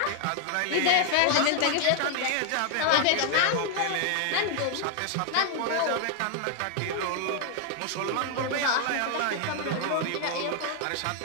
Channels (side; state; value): both; different; correlation 0.00